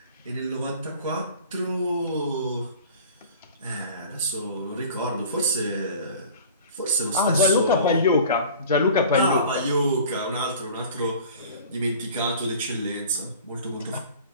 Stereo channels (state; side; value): inverted; both; correlation -0.43